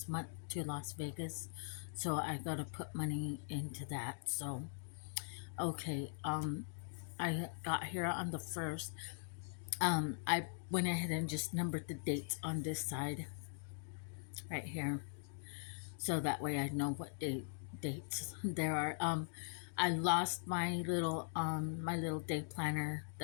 month to Las Vegas. So I got to put money into that. So, okay, I got here on the 1st. I went ahead and just numbered the dates on this side right here. So that way I know what dates there are. I lost my little day planner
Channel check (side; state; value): right; silent; digital silence